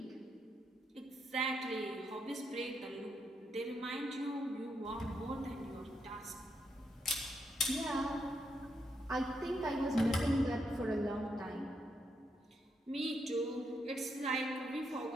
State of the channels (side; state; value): both; normal; correlation 0.80